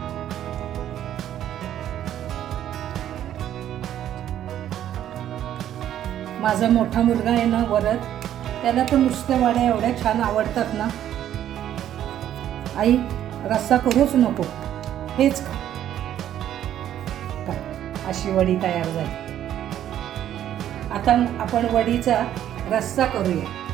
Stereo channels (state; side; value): quieter; left; 11.2 dB